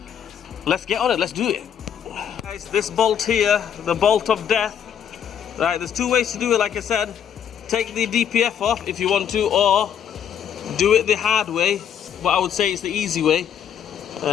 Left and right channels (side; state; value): right; quieter; 8.7 dB